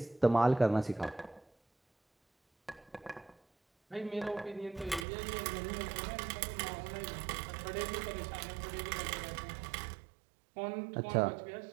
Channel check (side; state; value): left; drops out; at 5.1 s